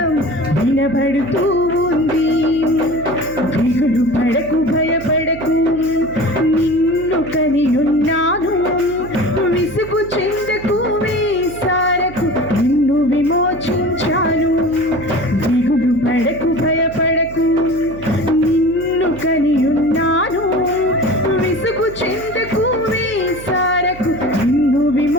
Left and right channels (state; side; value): noise; right; hum, 15 dB below the sound